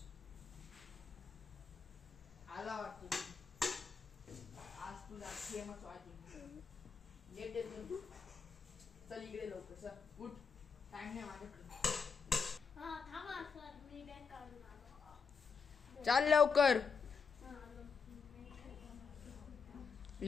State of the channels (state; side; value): quieter; right; 5.7 dB